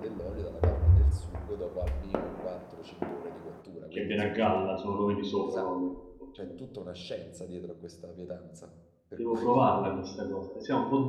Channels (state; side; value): identical; both; correlation 1.00